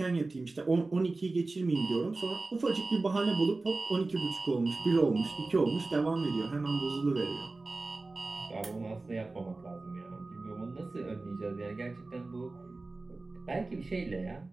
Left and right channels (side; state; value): left; quieter; 3.3 dB